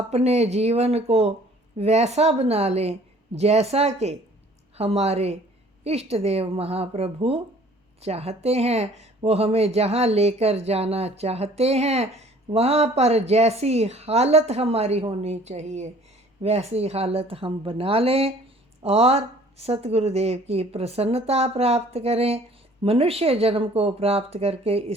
जीवन को वैसा बना लें जैसा कि हमारे इष्ट देव महाप्रभु चाहते हैं। वो हमें जहाँ लेकर जाना चाहते हैं, वहाँ पर जैसी हालत हमारी होनी चाहिए वैसी हालत हम बना लें और सतगुरुदेव की प्रसन्नता प्राप्त करें। मनुष्य जन्म को प्राप्त करके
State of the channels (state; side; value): normal; both; correlation 0.53